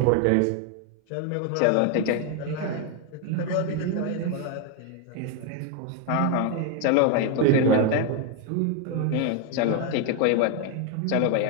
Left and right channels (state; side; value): different; both; correlation 0.01